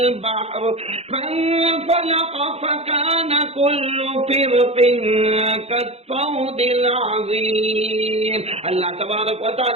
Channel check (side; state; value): left; late; 0.30 ms